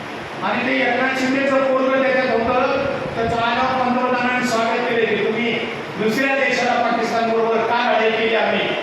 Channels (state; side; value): identical; both; correlation 1.00